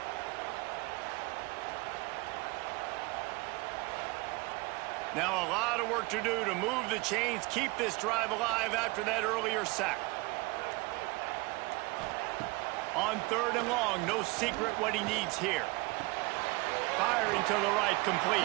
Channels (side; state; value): left; quieter; 24.9 dB